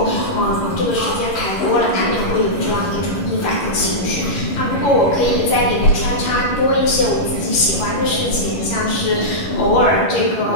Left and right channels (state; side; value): late; right; 11 ms